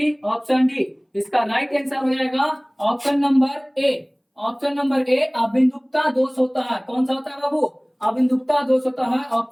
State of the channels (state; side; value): identical; both; correlation 1.00